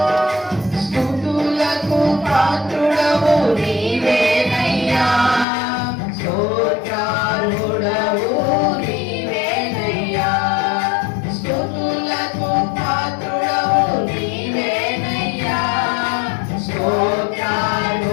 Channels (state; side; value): drops out; right; at 5.5 s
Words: స్తుతులకు పాత్రుడవు నీవేనయ్యా స్తోత్రార్హుడవు నీవేనయ్యా స్తుతులకు పాత్రుడవు నీవేనయ్యా